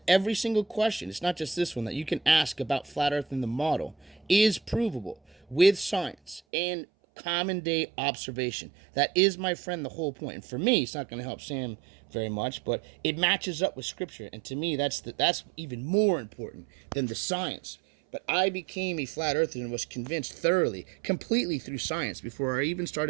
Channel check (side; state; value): left; drops out; at 6.4 s